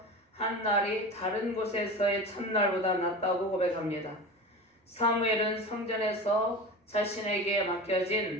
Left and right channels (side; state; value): both; normal; correlation 0.30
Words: 한 날이 다른 곳에서의 첫날보다 낫다고 고백합니다. 사무엘은 성전에서 자신에게